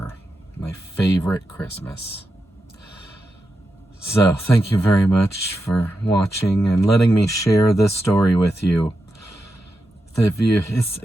My favorite Christmas. So, thank you very much for watching and letting me share this story with you. If it's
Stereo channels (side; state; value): both; normal; correlation 0.88